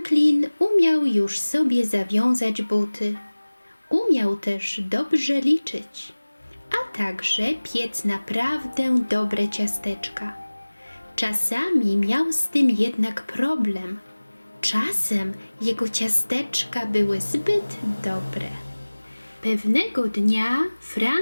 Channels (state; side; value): inverted; both; correlation -1.00